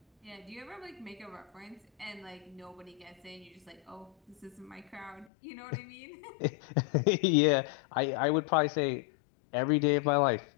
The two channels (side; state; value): right; drops out; at 5.2 s